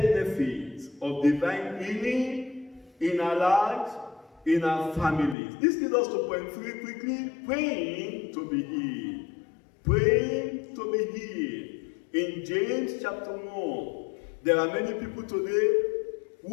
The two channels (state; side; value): drops out; right; at 5.4 s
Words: of divine healing in our lives, in our families. This leads us to point 3 quickly. Praying to be healed. Praying to be healed. In James chapter 1, there are many people today